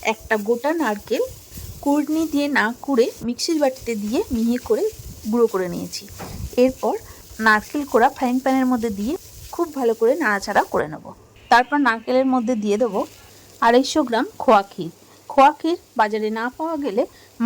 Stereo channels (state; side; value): identical; both; correlation 1.00